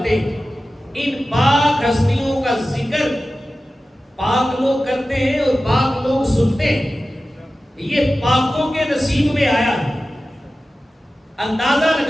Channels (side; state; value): both; normal; correlation 0.95